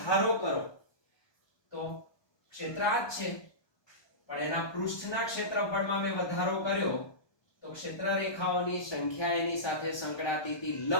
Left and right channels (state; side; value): late; right; 1.2 ms